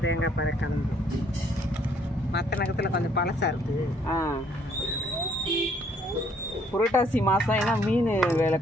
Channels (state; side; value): normal; both; correlation 0.64